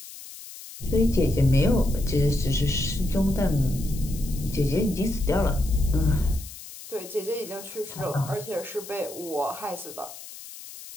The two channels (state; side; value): noise; left; hiss, 15 dB below the sound